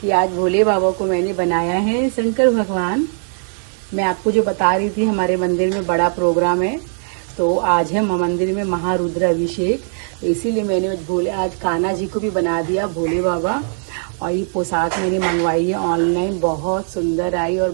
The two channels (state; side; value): silent; left; digital silence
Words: कि आज भोले बाबा को मैंने बनाया है शंकर भगवान। मैं आपको जो बता रही थी, हमारे मंदिर में बड़ा प्रोग्राम है, तो आज है मंदिर में महारुद्र अभिषेक। तो इसीलिए मैंने आज कान्हा जी को भी बना दिया भोले बाबा। और ये पोशाक मैंने मंगवाई है ऑनलाइन, बहुत सुंदर आई और